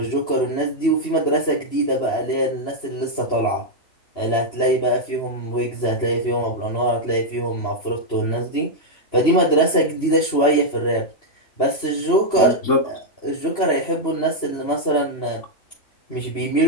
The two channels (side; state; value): right; late; 3.5 ms